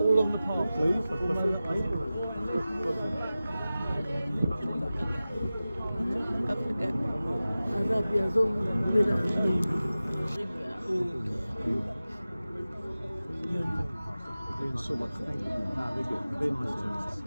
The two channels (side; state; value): both; inverted; correlation -0.96